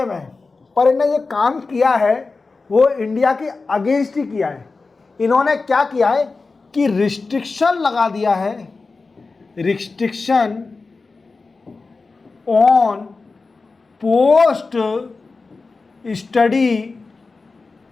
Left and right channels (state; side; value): quieter; right; 4.0 dB